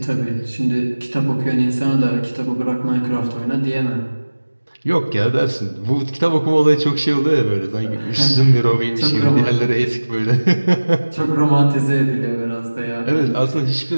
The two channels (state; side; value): inverted; both; correlation -1.00